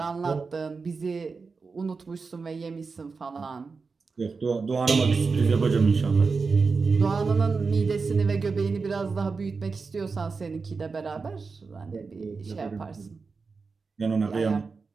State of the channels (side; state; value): left; quieter; 4.6 dB